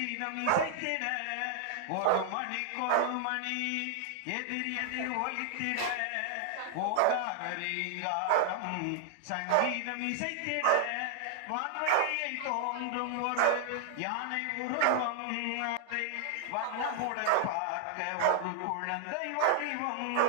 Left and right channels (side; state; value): both; different; correlation 0.00